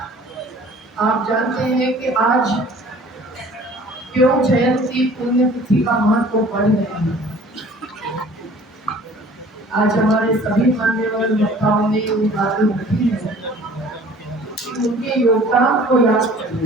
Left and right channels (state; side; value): normal; both; correlation 0.50